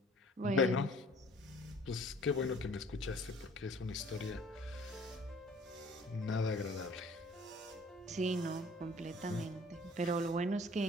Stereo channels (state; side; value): normal; both; correlation 0.53